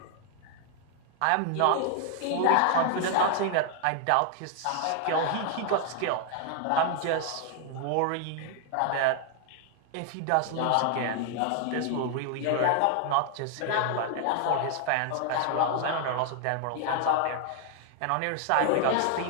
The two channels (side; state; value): both; different; correlation 0.00